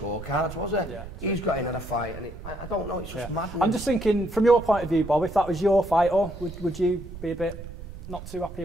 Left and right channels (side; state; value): right; noise; rumble, 12 dB below the sound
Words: was he? Yeah. He's got in a fight, and I don't know, it's just madness. I'm just thinking, from your point of view, Bob, if that was your fight, would you be a bit... not too happy